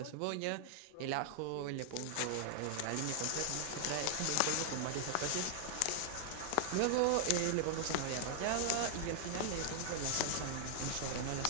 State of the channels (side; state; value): both; different; correlation -0.01